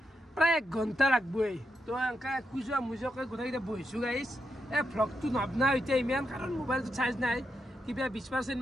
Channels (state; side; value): normal; both; correlation 0.83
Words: প্ৰায় 1 ঘণ্টা লাগবই তো এনেকা খুজা মুজকে গোটেইকেইটা বহিছো গাইছ ভ্লগটো নবনা এতিয়া ইমান কাৰণ মোবাইলটো চাৰ্জ নাই কিবা 20%